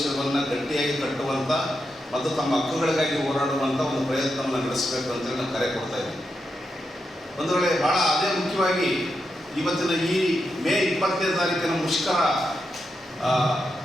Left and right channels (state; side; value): normal; both; correlation 0.85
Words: ಗಟ್ಟಿಯಾಗಿ ಕಟ್ಟುವಂಥ ಮತ್ತು ತಮ್ಮ ಹಕ್ಕುಗಳಿಗಾಗಿ ಹೋರಾಡುವಂಥ ಒಂದು ಪ್ರಯತ್ನವನ್ನು ನಡೆಸಬೇಕು ಅಂತೇಳಿ ನಾವು ಕರೆ ಕೊಡ್ತಾ ಇದ್ದೀವಿ. ಒಂದು ವೇಳೆ ಭಾಳ ಅದೇ ಮುಖ್ಯವಾಗಿ ಇವತ್ತಿನ ಈ ಮೇ 20ನೇ ತಾರೀಕಿನ ಮುಷ್ಕರ